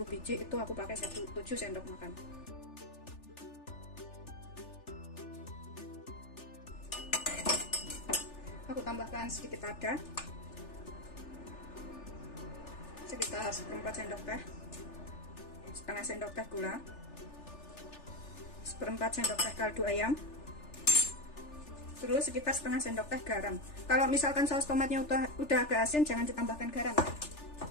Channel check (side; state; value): right; late; 3.4 ms